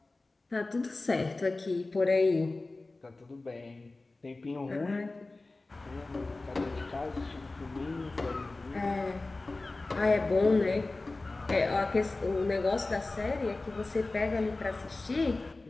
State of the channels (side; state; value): right; quieter; 3.2 dB